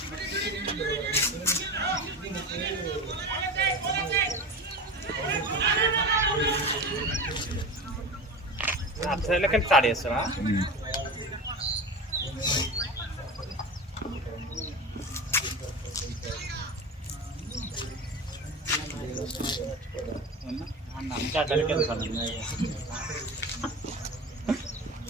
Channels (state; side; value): normal; both; correlation 0.29